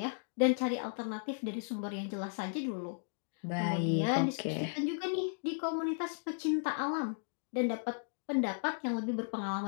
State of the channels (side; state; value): right; silent; digital silence